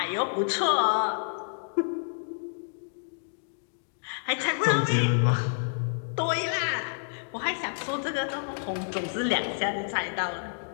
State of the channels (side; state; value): right; silent; digital silence